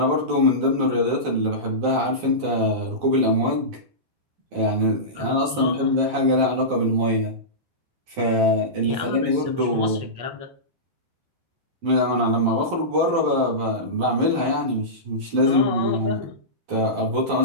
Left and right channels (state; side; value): late; left; 12 ms